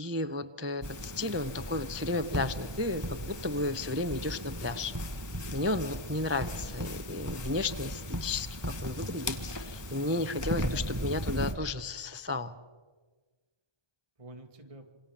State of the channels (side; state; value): left; late; 1.2 ms